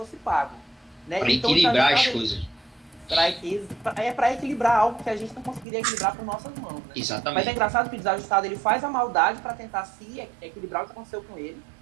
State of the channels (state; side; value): drops out; left; at 5.7 s